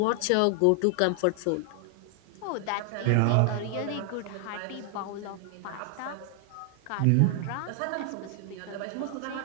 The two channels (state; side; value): different; both; correlation 0.00